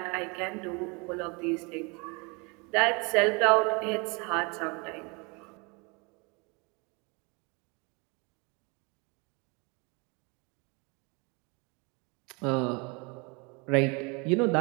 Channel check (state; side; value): quieter; left; 29.8 dB